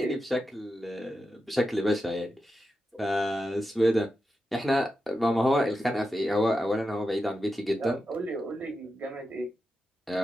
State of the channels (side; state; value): both; normal; correlation 0.89